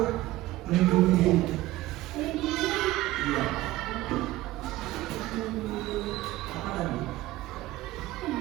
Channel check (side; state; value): left; quieter; 17.0 dB